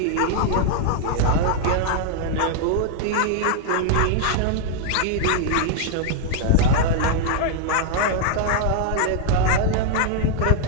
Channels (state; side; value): different; both; correlation 0.00